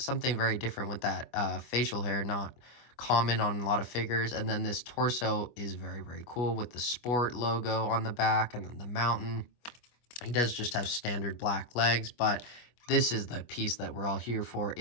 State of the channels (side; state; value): right; late; 25 ms